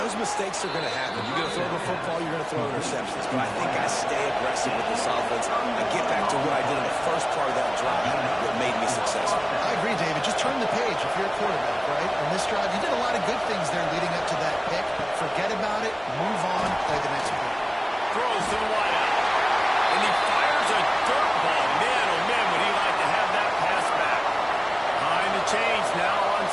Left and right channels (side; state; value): both; identical; correlation 1.00